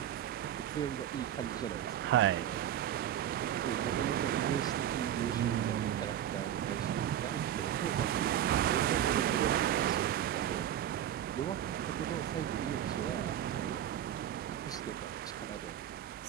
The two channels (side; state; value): left; quieter; 10.8 dB